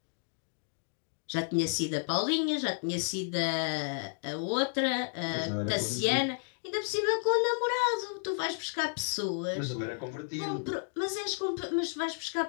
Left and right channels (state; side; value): silent; right; 56 dB below the other